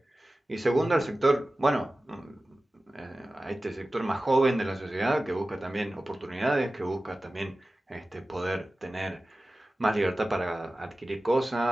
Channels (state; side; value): normal; both; correlation 0.96